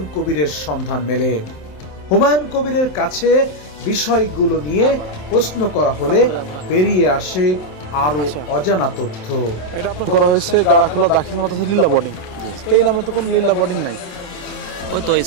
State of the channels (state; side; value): late; right; 27 ms